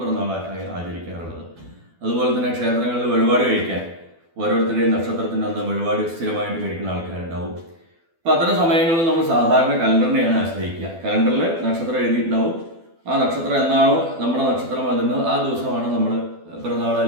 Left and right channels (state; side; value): late; left; 12 ms